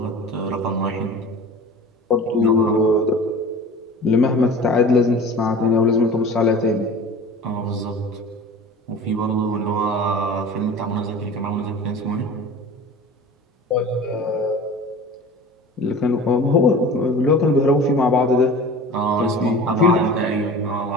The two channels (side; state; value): both; normal; correlation 0.38